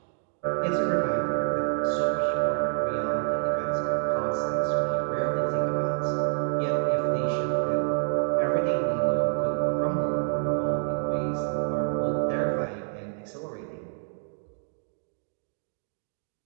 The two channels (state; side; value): silent; left; digital silence